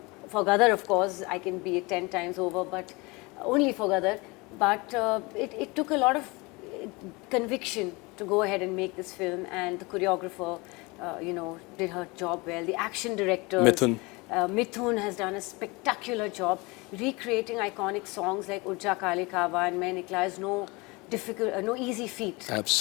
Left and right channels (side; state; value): right; quieter; 25.6 dB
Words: for Gadar, of course, I can be it 10 times over, but only for Gadar. But it took a lot of conviction to go ahead and make this film, and the choreographer, did her job well. The action directors, Mithun has done a spectacular job recreating iconic songs like Urja Kale Kawa and Main Nikla is no easy feat. Absolutely.